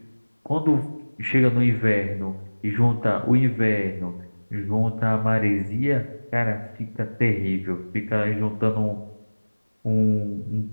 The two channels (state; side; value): inverted; both; correlation -1.00